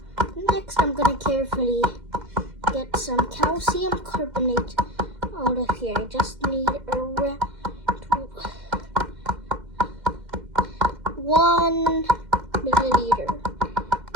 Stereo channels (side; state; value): left; late; 2.1 ms